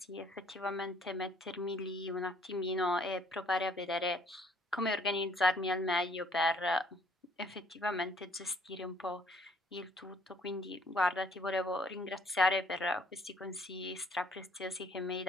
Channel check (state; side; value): normal; both; correlation 0.62